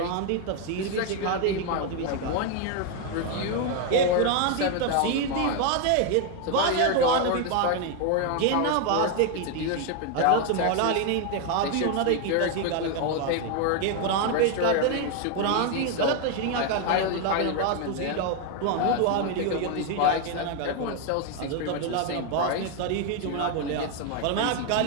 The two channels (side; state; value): both; different; correlation 0.01